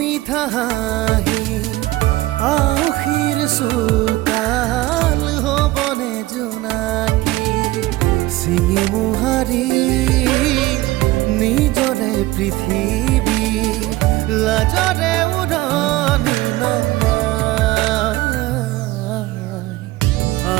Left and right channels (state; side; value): quieter; left; 18.4 dB